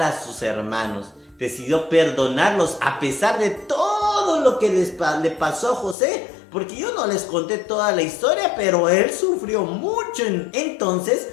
a sus hermanos, decidió perdonarlos a pesar de todo lo que le pasó a José, porque yo no les conté toda la historia, pero él sufrió mucho. Entonces,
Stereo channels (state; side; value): drops out; right; at 6.0 s